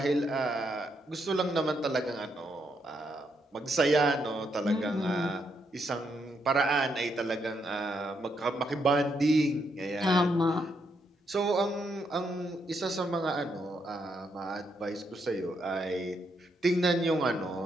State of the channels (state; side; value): normal; both; correlation 0.78